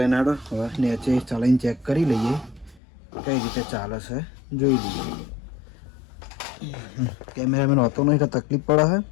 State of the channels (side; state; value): right; drops out; at 2.8 s